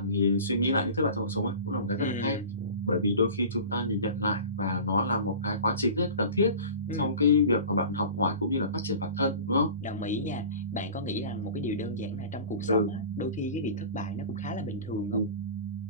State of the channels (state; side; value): inverted; both; correlation -0.37